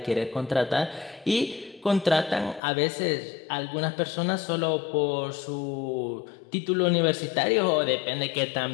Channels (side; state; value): right; drops out; at 2.6 s